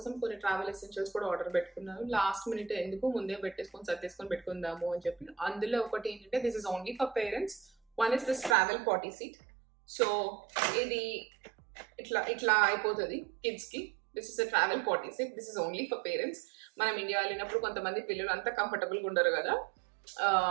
కొన్ని ట్రావెల్ ఎసెన్షియల్స్ కూడా ఆర్డర్ పెట్టుకున్నాను. లాస్ట్ మినిట్ ఎందుకు ముందే పెట్టేసుకొని సర్దేసుకొని పెట్టుకుందాము అని చెప్పి. అందులో ఒకటి ఏంటంటే this is only for parents. One is this travel party seat. So ఇది ఇట్లా అయిపోతుంది కిడ్స్ కి. This is a travel party seat. This is only for parents. మనం ఇండియా వెళ్ళినప్పుడు కొంతమంది పిల్లలు అంత కంఫర్టబుల్ గా ఉండరు కదా,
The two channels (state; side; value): drops out; left; at 8.6 s